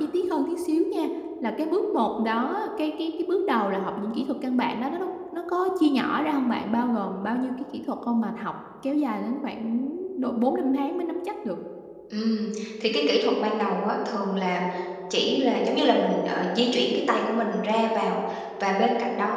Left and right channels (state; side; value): identical; both; correlation 1.00